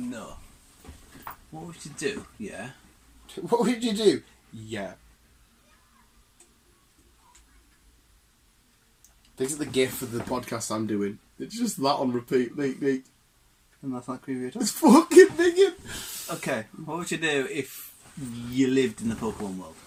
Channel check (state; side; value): identical; both; correlation 1.00